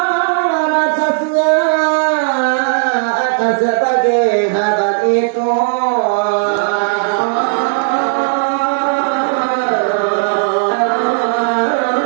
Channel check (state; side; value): silent; left; digital silence